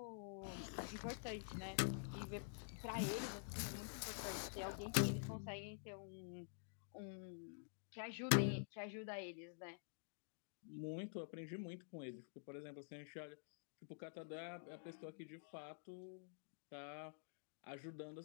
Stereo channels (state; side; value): silent; right; digital silence